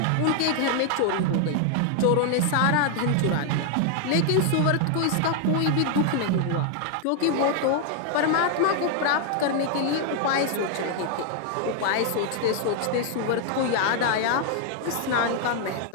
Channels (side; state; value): both; different; correlation 0.00